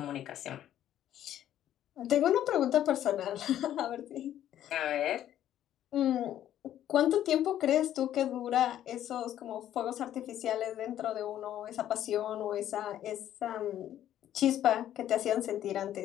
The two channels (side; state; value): right; quieter; 11.6 dB